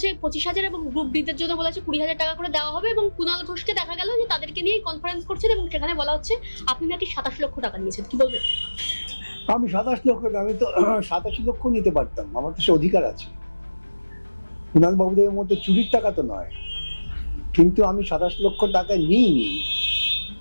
25,000 এবং গ্রুপ ডি দের জন্য বলেছে 20,000 টাকা করে দেওয়া হবে, এবং কুণাল ঘোষকে দেখা গেল যে তাদেরকে নিয়ে কনফারেন্স করছেন এবং সেখানে বলা হচ্ছে আপনি নাকি 27 লক্ষ টাকা নিয়েছেন। কি বলবেন? আমি 27 লক্ষ, আমি তো 87 লক্ষ নিতে পারতাম, আমার তো সে অধিকার আছে। কুণাল বাবুদের মধ্যে চুরির টাকা তো নয়, কিন্তু আমি 27 লক্ষ টাকা নিইনি।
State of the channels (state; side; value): inverted; both; correlation -1.00